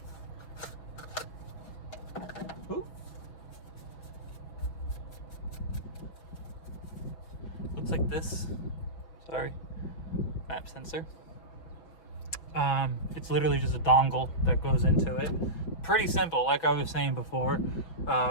Ooh. Looks like this. Sorry. Map sensor. It's literally just a dongle that goes into it. Pretty simple, like I was saying before.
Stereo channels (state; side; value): late; right; 6.1 ms